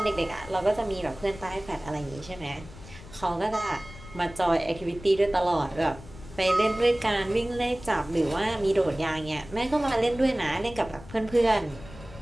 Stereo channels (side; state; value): left; noise; rumble, 17 dB below the sound